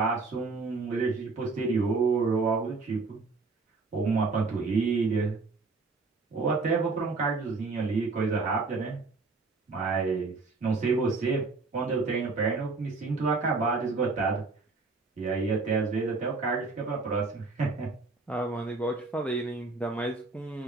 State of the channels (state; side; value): quieter; left; 3.9 dB